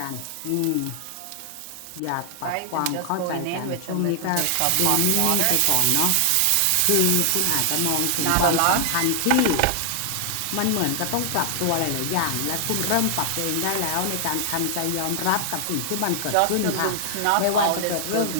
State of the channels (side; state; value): both; different; correlation 0.00